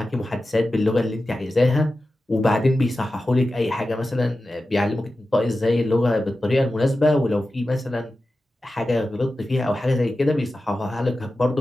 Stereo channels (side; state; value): both; normal; correlation 0.93